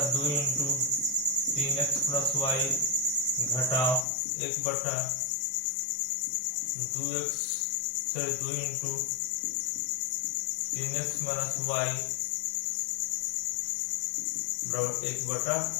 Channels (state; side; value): drops out; right; at 4.0 s